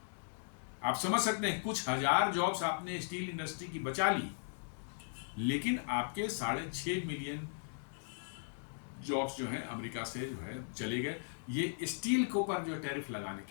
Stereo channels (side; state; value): right; silent; digital silence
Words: आप समझ सकते हैं, कुछ हजार जॉब्स आपने स्टील इंडस्ट्री की बचा ली, लेकिन आपके 6.5 मिलियन जॉब्स जो है अमेरिका से जो है चले गए। ये स्टील के ऊपर जो टैरिफ लगाने